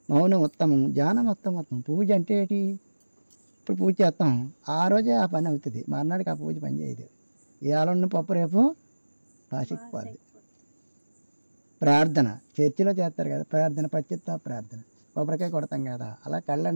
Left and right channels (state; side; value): inverted; both; correlation -1.00